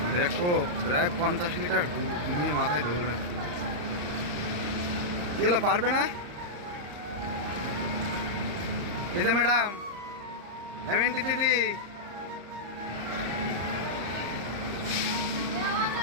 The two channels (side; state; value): left; late; 34 ms